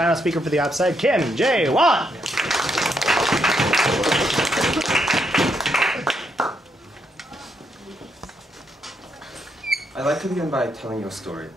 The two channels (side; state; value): both; normal; correlation 0.77